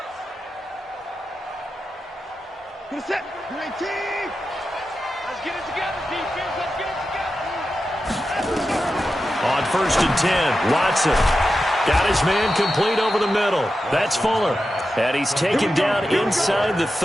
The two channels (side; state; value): both; normal; correlation 0.91